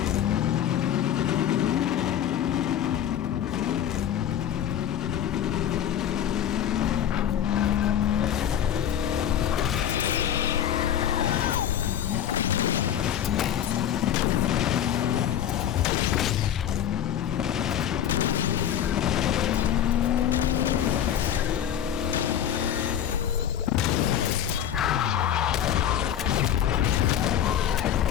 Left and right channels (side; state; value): right; quieter; 10.0 dB